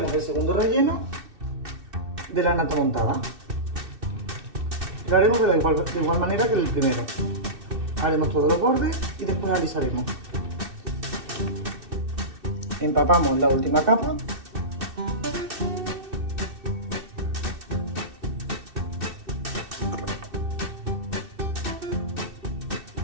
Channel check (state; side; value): late; left; 2.6 ms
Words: el segundo relleno de la nata montada. Lo haremos de igual manera que el primero. Haremos todos los bordes y después alisaremos. Empapamos la última capa.